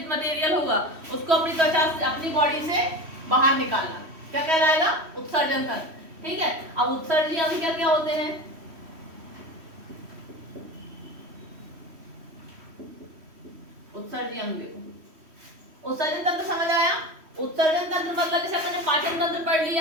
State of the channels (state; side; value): late; left; 3.1 ms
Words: मटेरियल होगा, उसको अपनी त्वचा से, अपनी बॉडी से बाहर निकालना, क्या कहलाएगा? उत्सर्जन तंत्र। ठीक है, अब उत्सर्जी अंग क्या क्या होते हैं? उत्सर्जी अंग देखो, उत्सर्जन तंत्र समझ आया? उत्सर्जन तंत्र मतलब जैसे अपने पाचन तंत्र पढ़